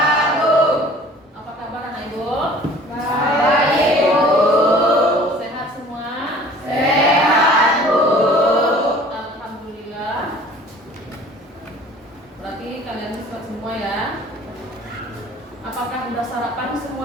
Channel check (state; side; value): normal; both; correlation 0.48